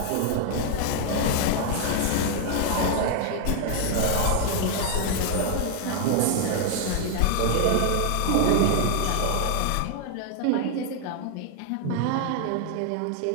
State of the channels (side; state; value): both; different; correlation 0.00